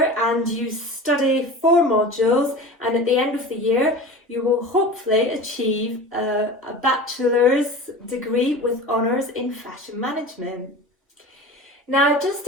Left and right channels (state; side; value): normal; both; correlation 0.34